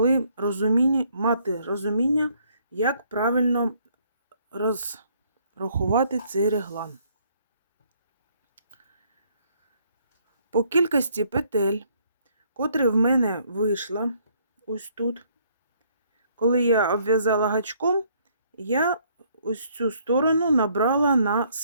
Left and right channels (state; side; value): inverted; both; correlation -0.66